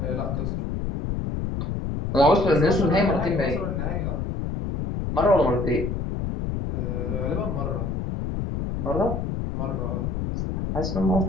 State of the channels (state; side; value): noise; left; rumble, 2 dB below the sound